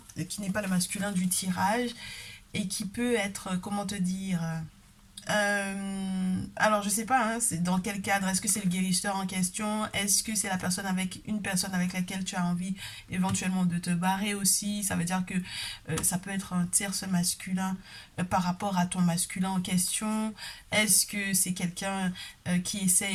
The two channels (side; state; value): both; identical; correlation 1.00